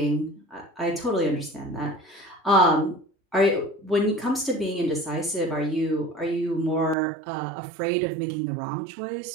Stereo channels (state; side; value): drops out; left; at 7.0 s